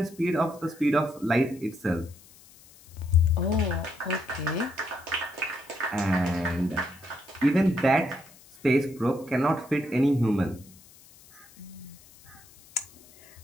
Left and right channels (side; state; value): left; noise; hiss, 24 dB below the sound